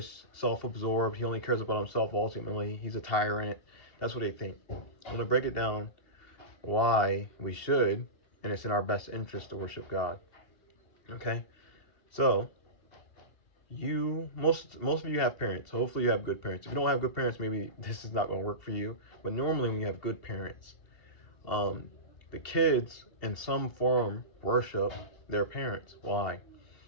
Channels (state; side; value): late; right; 2.7 ms